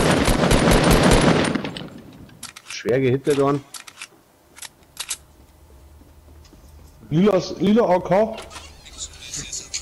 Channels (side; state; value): both; identical; correlation 1.00